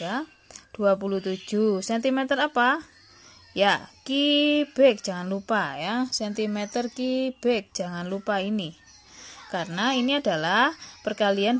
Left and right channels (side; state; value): both; identical; correlation 1.00